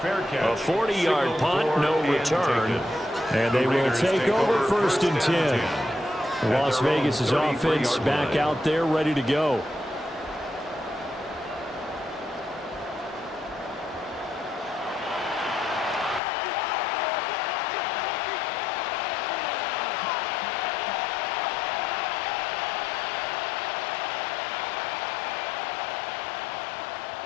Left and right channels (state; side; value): drops out; right; at 16.2 s